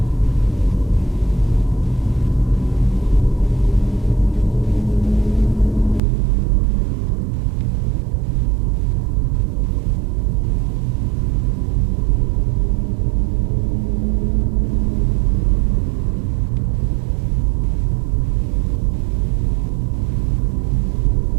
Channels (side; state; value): left; drops out; at 6.0 s